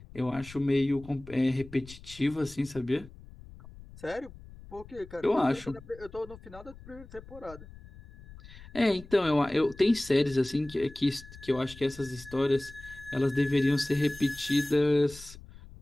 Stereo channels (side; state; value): left; noise; rumble, 18 dB below the sound